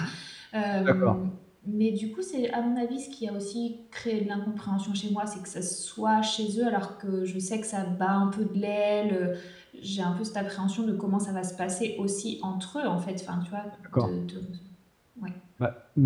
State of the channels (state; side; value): identical; both; correlation 1.00